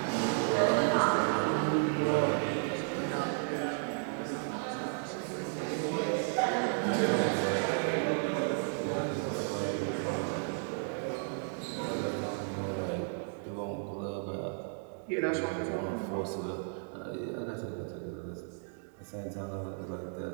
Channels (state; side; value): silent; left; 55 dB below the other